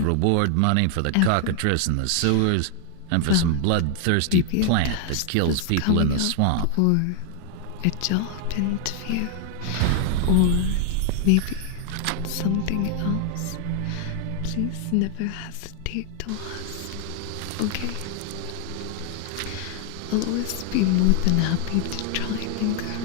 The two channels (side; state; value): both; different; correlation 0.00